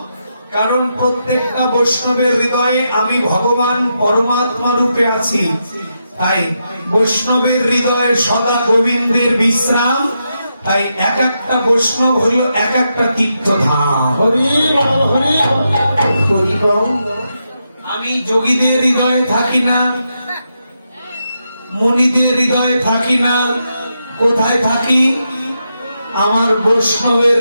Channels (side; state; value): both; inverted; correlation -0.84